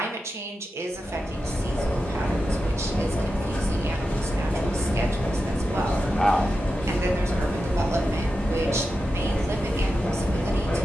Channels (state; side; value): normal; both; correlation 0.90